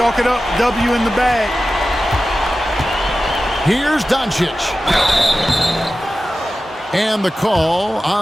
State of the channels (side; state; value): both; normal; correlation 0.94